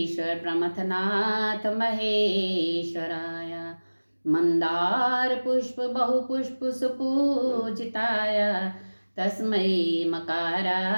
प्रमथनाथ महेश्वराय मंदार पुष्प बहुपुष्प सुपूजिताय तस्मै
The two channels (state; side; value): inverted; both; correlation -1.00